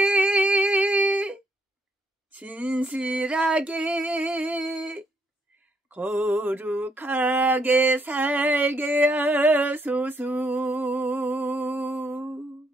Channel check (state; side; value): normal; both; correlation 0.72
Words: 진실하게 거룩하게 살게 하소서.